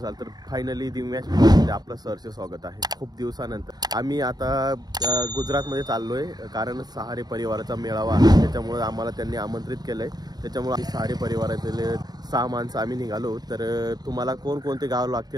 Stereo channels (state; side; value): late; left; 0.19 ms